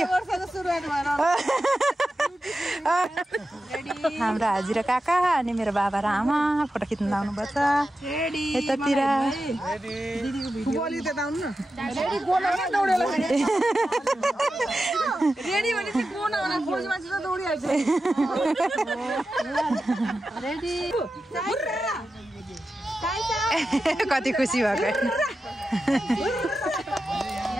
हाम्रो हाजी र काका अनि मेरो बाबा र आमा फोटो खिच्न आउनुपर्छ यतातिर कति खुसी भएको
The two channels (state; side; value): normal; both; correlation 0.91